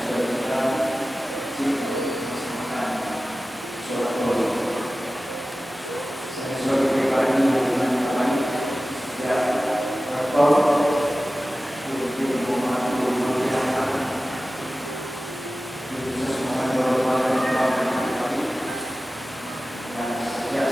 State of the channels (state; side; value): normal; both; correlation 0.96